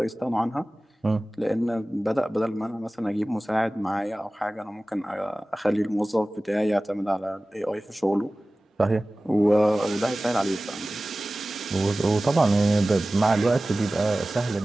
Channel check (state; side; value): normal; both; correlation 0.97